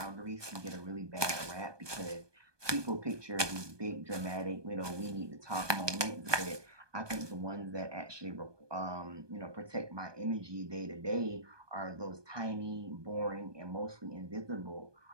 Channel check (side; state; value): left; late; 1.2 ms